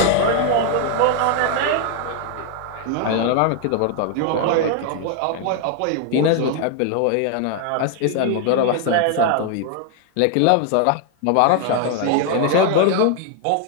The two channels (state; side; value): different; both; correlation 0.00